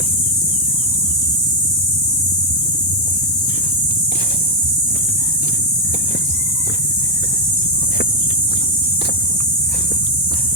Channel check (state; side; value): normal; both; correlation 0.03